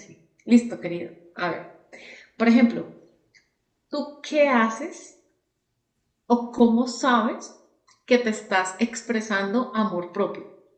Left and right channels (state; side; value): identical; both; correlation 1.00